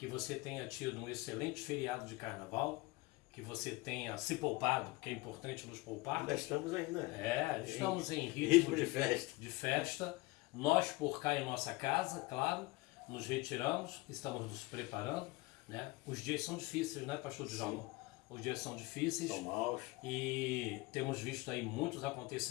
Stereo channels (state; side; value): quieter; right; 21.9 dB